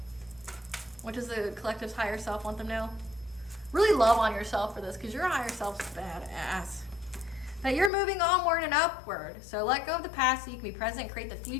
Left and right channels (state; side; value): drops out; right; at 7.9 s